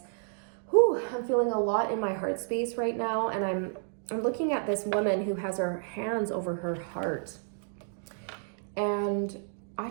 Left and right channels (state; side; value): silent; left; digital silence